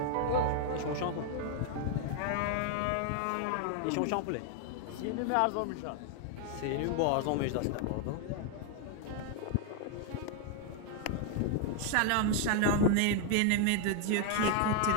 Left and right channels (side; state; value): both; different; correlation 0.00